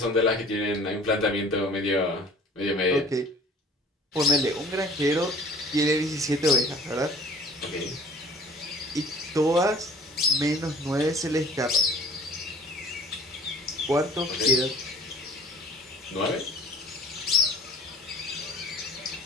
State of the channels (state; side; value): normal; both; correlation 0.47